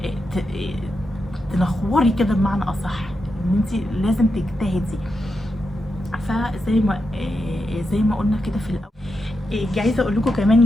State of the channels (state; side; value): normal; both; correlation 0.86